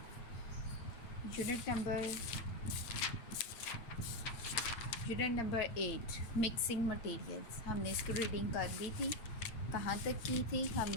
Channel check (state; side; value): late; right; 8.5 ms